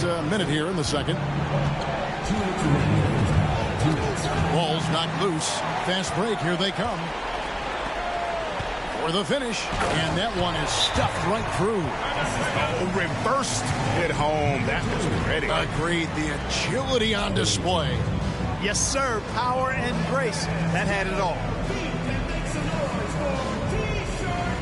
minute here in the second. Ball's knocked loose. Fast break. Here they come. For the finish. And that one is stuffed right through. Reversed it home. That was pretty. Agreed. The agility on display. Yes, sir. Power and grace. That had it all.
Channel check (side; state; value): both; identical; correlation 1.00